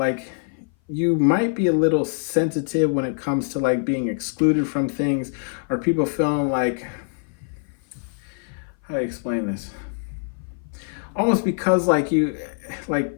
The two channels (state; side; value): silent; right; 58 dB below the other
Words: you might be a little sensitive when it comes to, like, being excluded from things, or people feeling like, how do I explain this? Almost because, like,